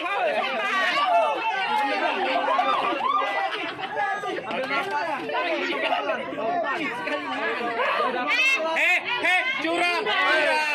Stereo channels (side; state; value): both; identical; correlation 1.00